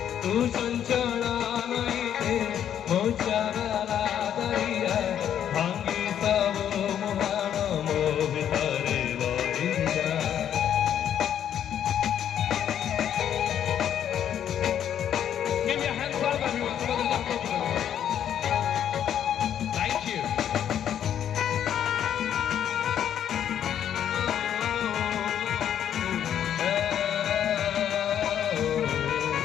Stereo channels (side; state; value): right; quieter; 9.7 dB